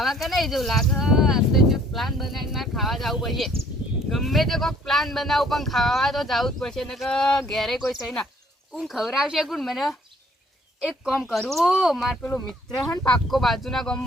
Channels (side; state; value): both; normal; correlation 0.60